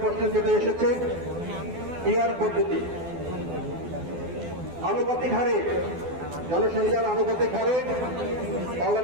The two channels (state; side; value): late; left; 12 ms